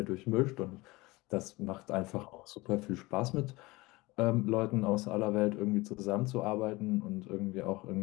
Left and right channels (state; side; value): quieter; right; 22.1 dB